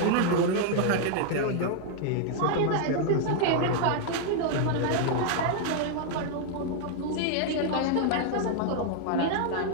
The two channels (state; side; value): different; both; correlation 0.00